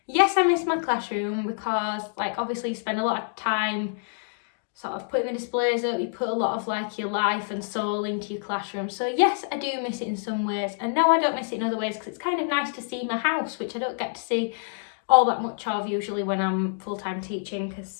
Yes, I miss my classroom because like obviously you spend a lot of time sort of putting the displays up, you put a lot of like your life and soul into your classroom. So yes, I do miss it in some ways, and no, I don't miss it in other ways because it's kind of nice to see my house, which I don't get to see all that much of usually when I'm full-time teaching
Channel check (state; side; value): silent; right; digital silence